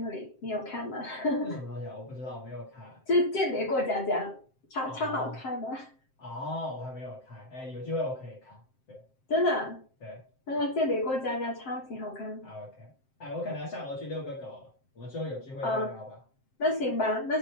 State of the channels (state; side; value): late; right; 7.6 ms